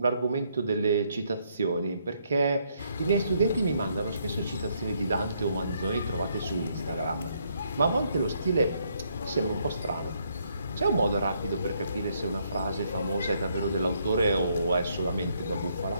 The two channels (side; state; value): both; inverted; correlation -0.72